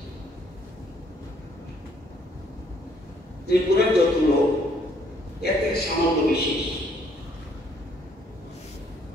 ত্রিপুরার যত লোক এতে সামান্য বিশেষ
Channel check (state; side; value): normal; both; correlation 0.66